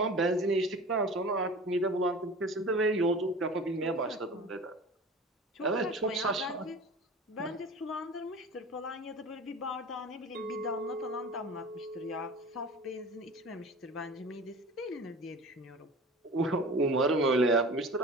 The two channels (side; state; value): both; normal; correlation 0.38